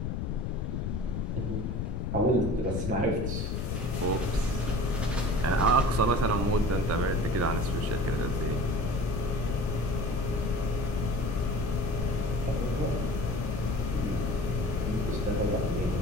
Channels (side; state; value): left; noise; rumble, 1 dB below the sound